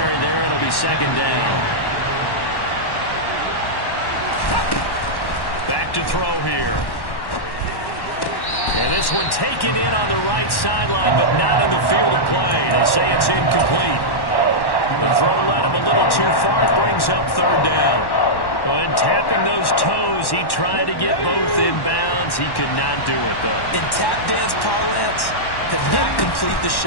there. It'll be 2nd down. Back to throw here. And this one taken in on the right sideline, but not in the field of play. They say it's incomplete. The throw led him a little too far. It brings up 3rd down. And tapping those toes, he tried to get both in bounds. He could not do it, though. In tap dance parlance, could not complete the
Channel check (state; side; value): late; right; 1.1 ms